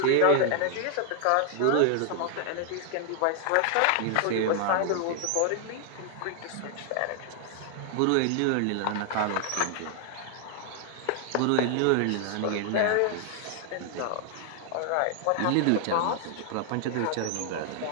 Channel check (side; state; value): both; different; correlation 0.00